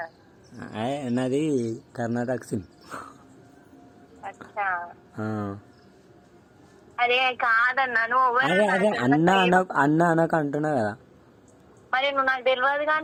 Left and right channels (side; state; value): both; identical; correlation 1.00